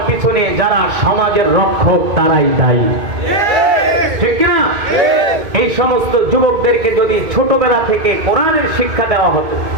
পিছনে যারা সমাজের রক্ষক তারাই দায়ী, ঠিক কিনা? এই সমস্ত যুবকদেরকে যদি ছোটবেলা থেকে কোরআনের শিক্ষা দেওয়া হতো,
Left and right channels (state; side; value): late; left; 2.1 ms